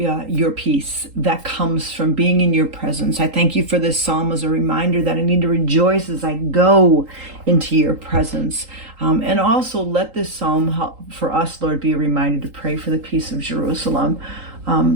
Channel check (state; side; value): late; left; 3.8 ms